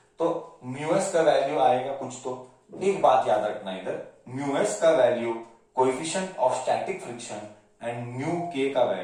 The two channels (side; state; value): both; identical; correlation 1.00